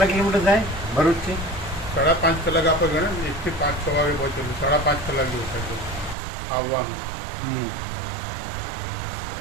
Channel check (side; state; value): left; drops out; at 6.2 s